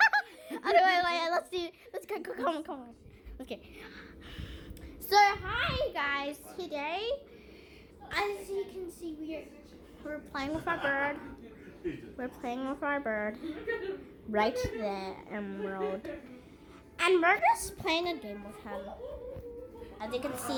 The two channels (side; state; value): both; identical; correlation 1.00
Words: wait. Let's go. Come on. Okay. So hi guys. Today, as you can see, we're playing with our bird. We're playing with our bird. Right there, Emerald. And we're just playing a game with him. As you can